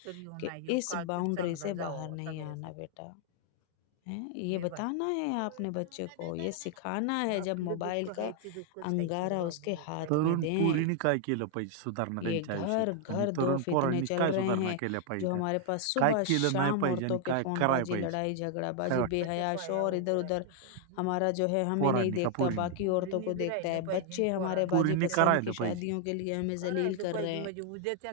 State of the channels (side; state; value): both; different; correlation 0.00